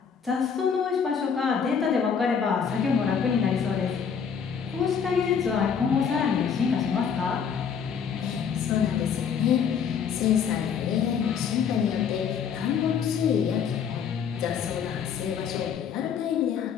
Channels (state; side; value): quieter; right; 7.0 dB